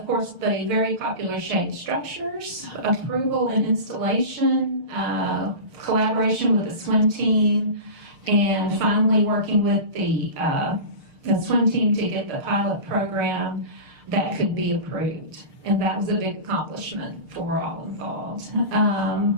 course, the very popular shade structures, approval and installation, collaboration with the swim team, and finally working with the swim team to get the pilot program that could be approved. And that was a big accomplishment for all involved.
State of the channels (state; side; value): late; left; 6.6 ms